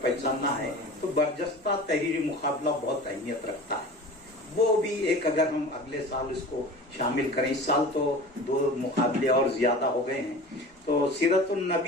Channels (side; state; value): both; normal; correlation 0.37